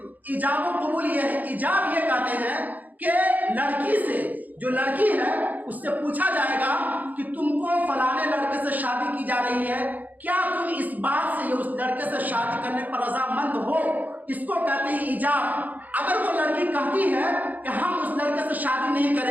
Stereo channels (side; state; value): left; late; 0.081 ms